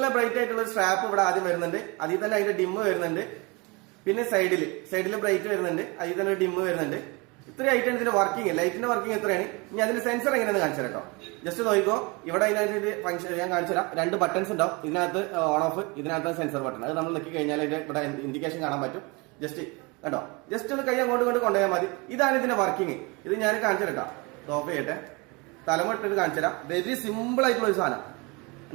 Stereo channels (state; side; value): quieter; left; 27.7 dB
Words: ബ്രൈറ്റ് ആയിട്ടുള്ള ഒരു സ്ട്രാപ്പ് ഇവിടെ ആദ്യം വരുന്നുണ്ട്. അതിൽ തന്നെ അതിന്റെ ഡിമ്മ് വരുന്നുണ്ട്. പിന്നെ സൈഡിൽ ബ്രൈറ്റ് വരുന്നുണ്ട്. അതിൽ തന്നെ ഒരു ഡിമ്മ് വരുന്നുണ്ട്. ഇത്രയും ആയിട്ടാണ് ഇതിന്റെ വർക്കിംഗ്. ലൈറ്റിന്റെ വർക്കിംഗ് എത്രയാണ്. ഇനി അതിന്റെ സെൻസർ എങ്ങനെയാണെന്ന് കാണിച്ചു തരാം കേട്ടോ. ജസ്റ്റ് നോക്കിക്കോ. ഇവിടെ അതിനകത്ത് ഫംഗ്ഷൻ ഞാൻ കാണിച്ചു തരാം. 2 ബട്ടൺസ് ഉണ്ടാവും. ഇതിനകത്ത് ഓൺ ഓഫ്, ഇതിനകത്ത് സെൻസർ ബട്ടൺ. അത് നമ്മൾ നിൽക്കി കഴിഞ്ഞാൽ ഇവിടെ ഇൻഡിക്കേഷൻ കാണാൻ പറ്റും. ജസ്റ്റ് കേട്ടോ, ജസ്റ്റ് ഒന്ന് കൈ അങ്ങോട്ട് കൊണ്ടുപോയാൽ മതി. ഇതാണ് ഇതിന്റെ വർക്കിംഗ്. ഇത് ഞാൻ കാണിച്ചു തരാം. ഓഫ് ചെയ്യട്ടെ. തലമ ഇട്ടിട്ട് കാണിച്ചു തരാം. വെരി സിമ്പിൾ ആയിട്ടുള്ള ഒരു സാധനം